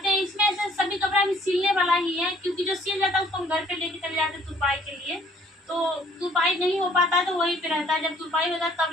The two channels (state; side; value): normal; both; correlation 0.60